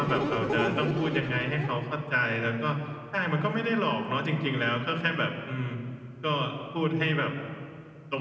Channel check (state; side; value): identical; both; correlation 1.00